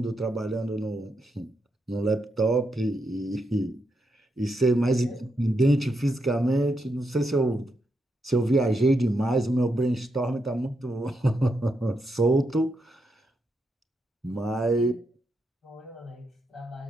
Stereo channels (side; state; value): both; normal; correlation 0.82